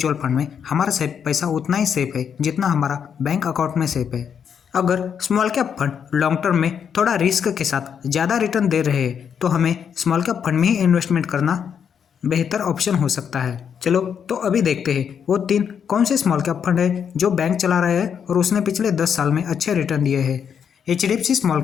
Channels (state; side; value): quieter; right; 7.6 dB